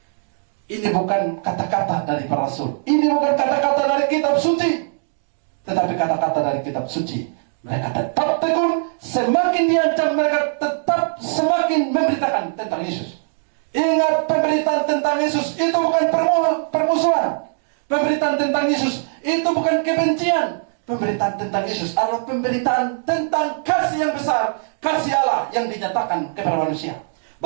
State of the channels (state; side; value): silent; left; digital silence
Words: Ini bukan kata-kata dari para rasul. Ini bukan kata-kata dari kitab suci. Tetapi kata-kata dari kitab suci. Mereka tetap tekun, semakin diancam mereka tetap semakin memberitakan tentang Yesus. Ingat, pemberitaan tentang Yesus itu bukan permusuhan. Pemberitaan tentang Yesus itu bukan kebencian. Pemberitaan tentang Yesus adalah pemberitaan tentang kasih yang besar, kasih Allah yang dinyatakan kepada manusia.